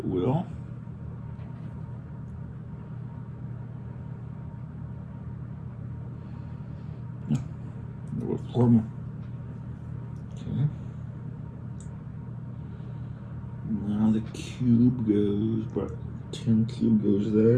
will. No, there were four more. Okay. Now the cube goes, but tin cube goes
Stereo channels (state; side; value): identical; both; correlation 1.00